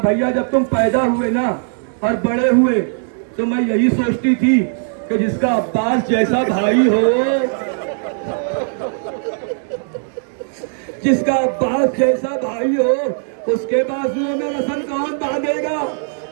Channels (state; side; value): silent; left; digital silence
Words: بھیا جب تم پیدا ہوئے نا اور بڑے ہوئے تو میں یہی سوچتی تھی کہ جس کا عباس جیسا بھائی ہو, جس کا عباس جیسا بھائی ہو اس کے بازوؤں میں رسن کون باندھے گا؟